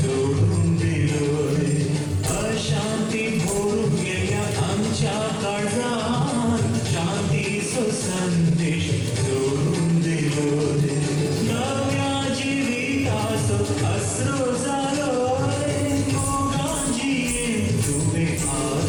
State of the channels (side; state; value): both; identical; correlation 1.00